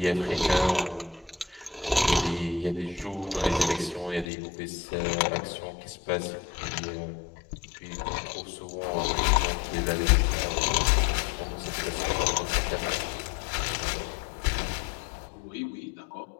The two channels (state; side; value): drops out; right; at 4.2 s